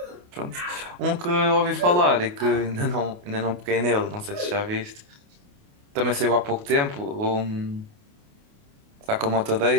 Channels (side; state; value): left; late; 28 ms